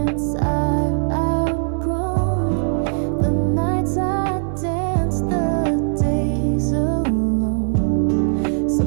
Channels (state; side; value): silent; left; digital silence